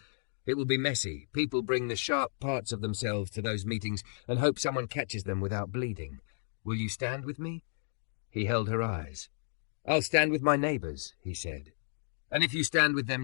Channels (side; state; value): right; silent; digital silence